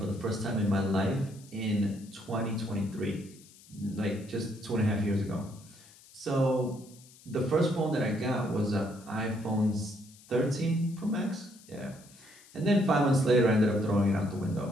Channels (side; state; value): left; noise; hiss, 24 dB below the sound